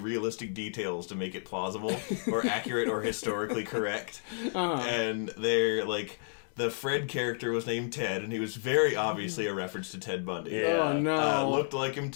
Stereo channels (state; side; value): silent; right; digital silence